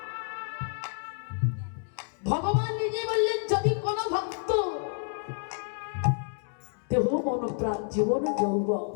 ভগবান নিজে বললেন, যদি কোন ভক্ত দেহ মন প্রাণ জীবন যৌবন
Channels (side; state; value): right; silent; 58 dB below the other